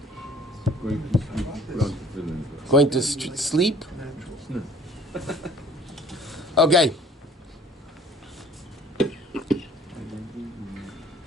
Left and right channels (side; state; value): both; normal; correlation 0.53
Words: Going to sleep? Okay.